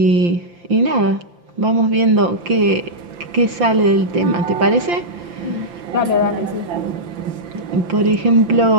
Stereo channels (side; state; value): left; late; 5.8 ms